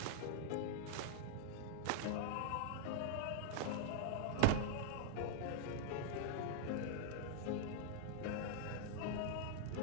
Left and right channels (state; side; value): different; both; correlation -0.01